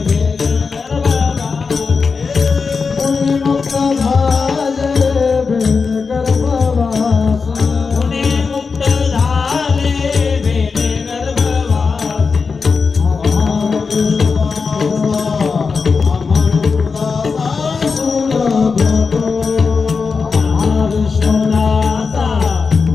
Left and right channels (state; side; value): quieter; right; 4.9 dB